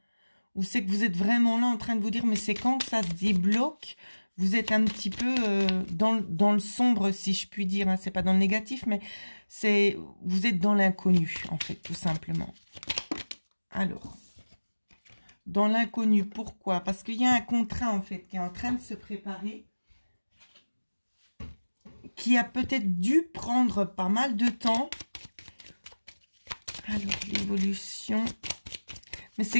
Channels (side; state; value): both; inverted; correlation -1.00